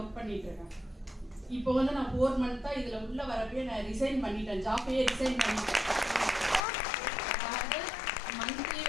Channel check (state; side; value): drops out; right; at 6.6 s